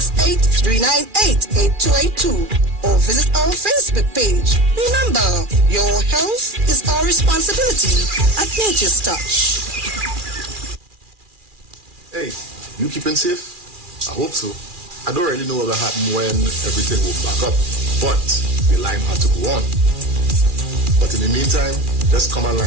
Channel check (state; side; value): late; left; 2.4 ms